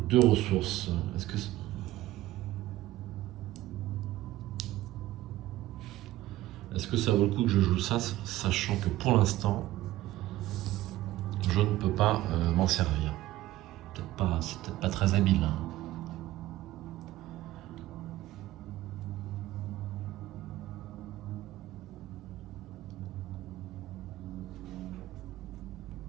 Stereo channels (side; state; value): left; quieter; 15.9 dB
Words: 2 ressources. Est-ce que ça vaut le coup que je joue ça, sachant que pour l'instant, je ne peux pas m'en servir. C'est peut-être pas très habile. Hein.